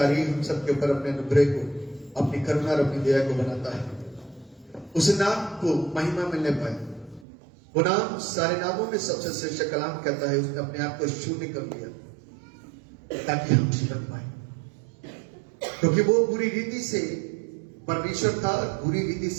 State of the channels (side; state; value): left; drops out; at 7.2 s